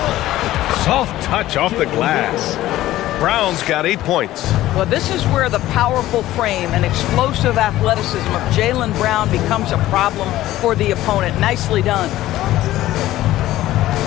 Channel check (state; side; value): quieter; right; 15.1 dB